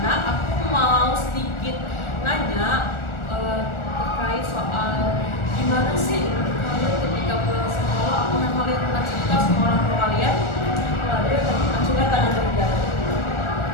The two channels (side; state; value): right; late; 1.4 ms